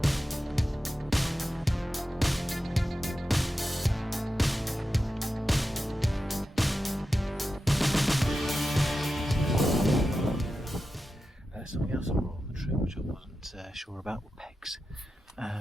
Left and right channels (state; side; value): normal; both; correlation 0.91